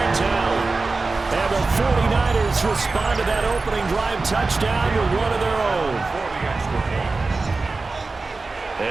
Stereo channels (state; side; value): quieter; left; 3.7 dB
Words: out. And the 49ers respond to that opening drive touchdown with one of their own.